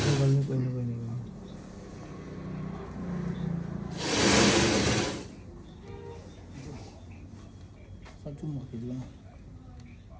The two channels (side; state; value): both; identical; correlation 1.00